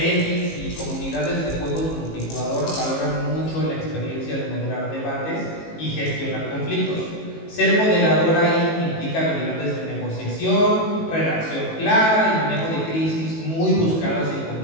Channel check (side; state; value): right; late; 18 ms